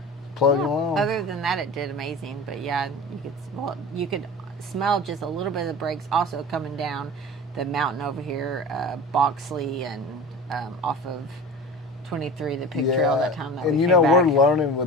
plugging along. Other than that, it did amazing. But yeah, you could smell just a little bit of the brakes also coming down the mountain over here, Boxley, and off of 23, the pig trail that time that and we you came know, back. we're learning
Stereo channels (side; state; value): both; normal; correlation 0.34